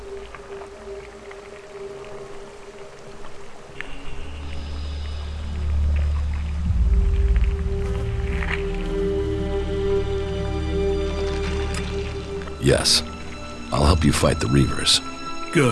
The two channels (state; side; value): identical; both; correlation 1.00